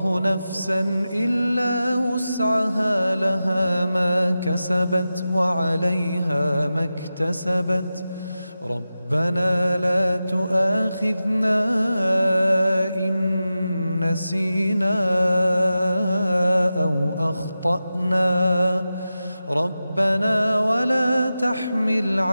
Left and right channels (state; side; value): inverted; both; correlation -0.93